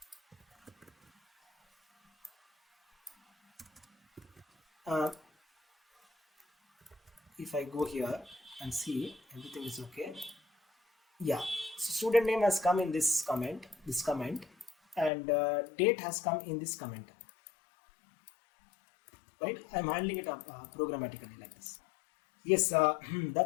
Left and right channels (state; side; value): drops out; right; at 15.1 s